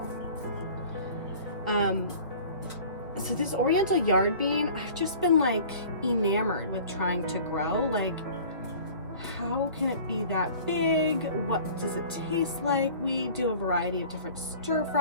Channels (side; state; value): both; inverted; correlation -0.45